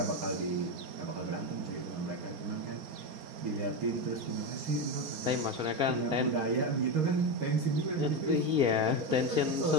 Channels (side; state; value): left; late; 4.3 ms